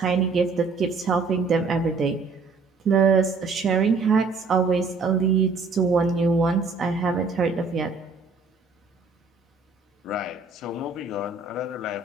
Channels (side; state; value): left; quieter; 4.3 dB